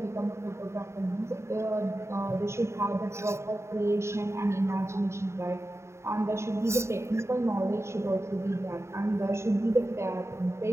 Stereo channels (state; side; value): late; left; 0.13 ms